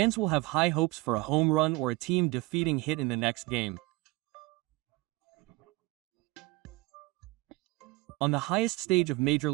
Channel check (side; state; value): left; quieter; 21.6 dB